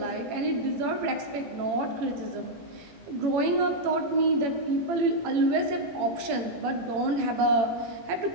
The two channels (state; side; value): late; left; 18 ms